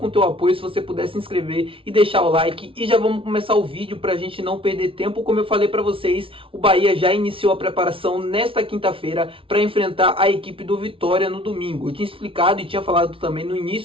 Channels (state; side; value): late; left; 0.26 ms